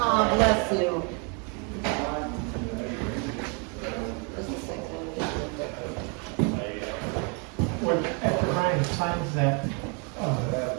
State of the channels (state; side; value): quieter; left; 35.6 dB